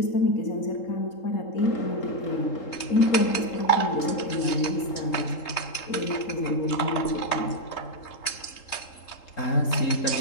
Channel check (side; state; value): right; late; 3.8 ms